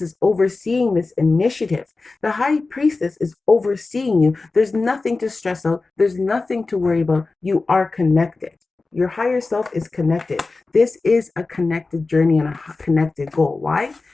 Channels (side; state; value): right; quieter; 3.7 dB